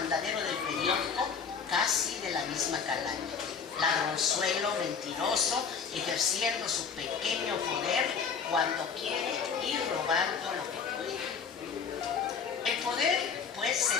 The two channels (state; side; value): quieter; right; 6.1 dB